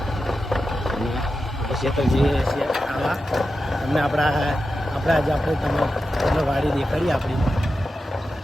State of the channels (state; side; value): normal; both; correlation 0.91